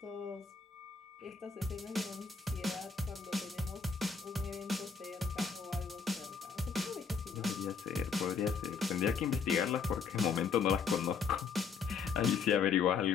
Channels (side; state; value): right; quieter; 5.7 dB